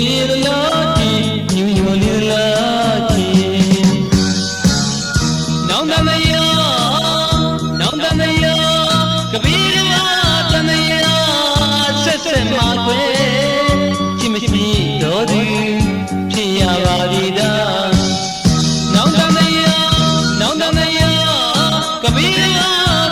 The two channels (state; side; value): identical; both; correlation 1.00